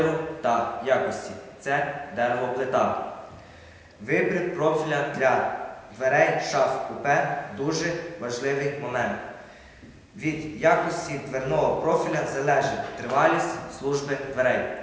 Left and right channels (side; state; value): both; identical; correlation 1.00